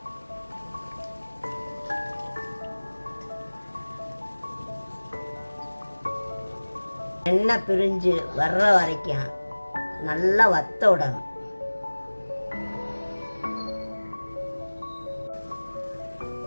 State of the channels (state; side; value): inverted; both; correlation -1.00